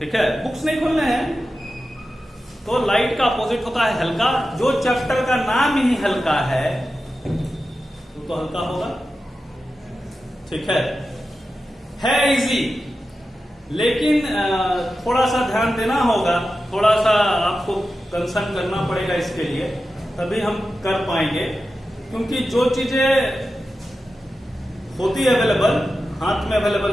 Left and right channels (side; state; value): both; normal; correlation 0.92